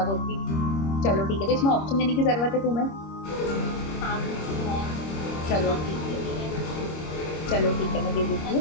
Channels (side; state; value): right; late; 26 ms